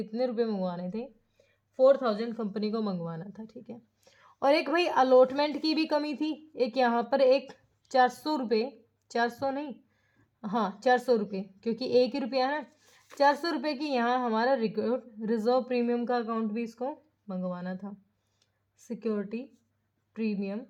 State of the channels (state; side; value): identical; both; correlation 1.00